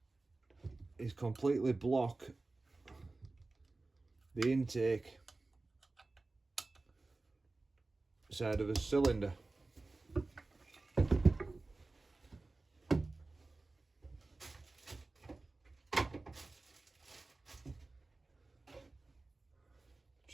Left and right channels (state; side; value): quieter; left; 3.3 dB